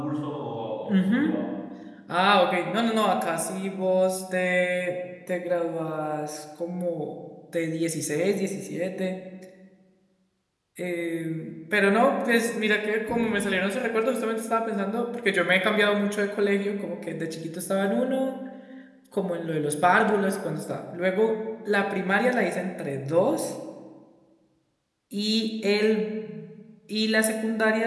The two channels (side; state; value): both; identical; correlation 1.00